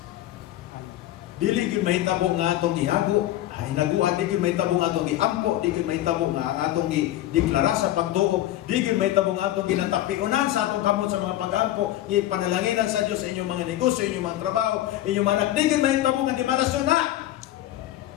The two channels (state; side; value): quieter; right; 14.0 dB